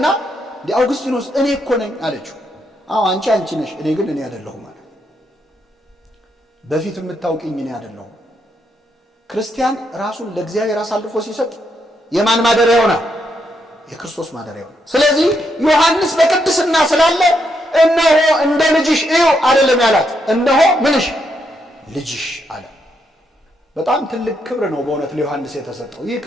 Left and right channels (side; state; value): both; normal; correlation 0.78